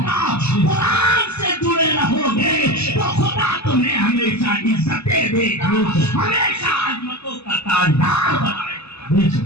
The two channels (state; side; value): late; right; 0.79 ms